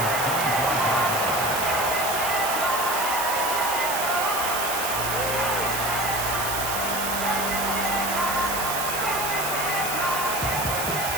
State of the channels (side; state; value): right; noise; hiss, 4 dB below the sound